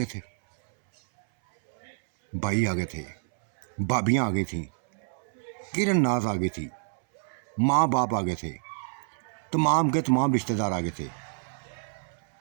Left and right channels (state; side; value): silent; left; 60 dB below the other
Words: थे भाई, आगे थे भाभियाँ, आगे थी किरण नाज, आगे थी माँ बाप, आगे थे तमाम के तमाम रिश्तेदार, आगे थे।